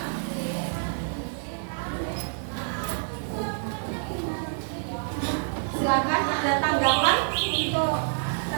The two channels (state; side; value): silent; left; digital silence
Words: Silakan ada tanggapan untuk